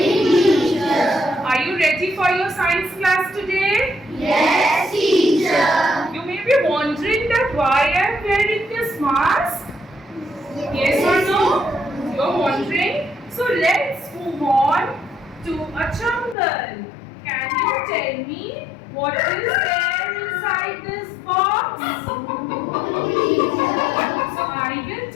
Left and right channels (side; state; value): right; drops out; at 16.4 s